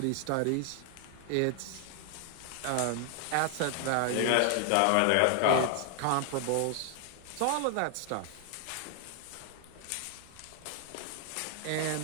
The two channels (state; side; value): different; both; correlation 0.00